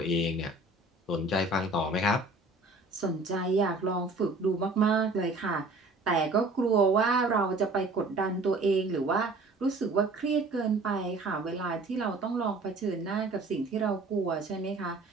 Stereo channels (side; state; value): left; quieter; 3.1 dB